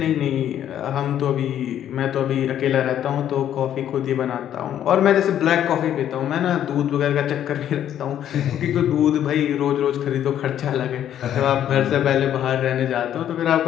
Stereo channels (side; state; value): right; quieter; 10.6 dB